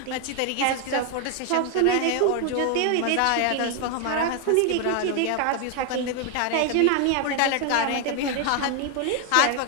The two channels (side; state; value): both; different; correlation 0.00